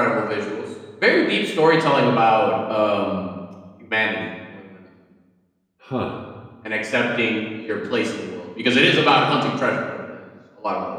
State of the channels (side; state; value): both; identical; correlation 1.00